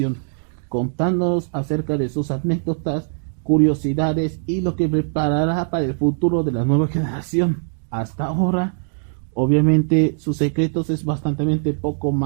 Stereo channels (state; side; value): silent; left; digital silence